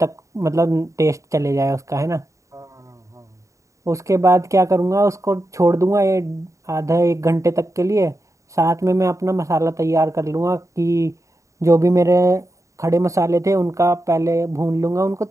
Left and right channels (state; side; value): late; left; 0.15 ms